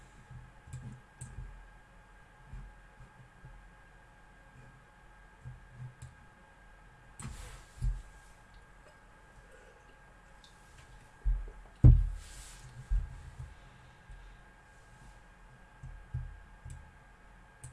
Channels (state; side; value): identical; both; correlation 1.00